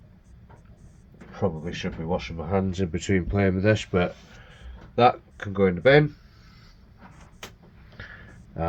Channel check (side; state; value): both; identical; correlation 1.00